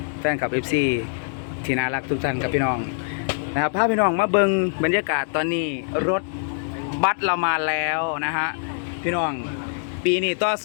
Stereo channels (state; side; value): silent; right; digital silence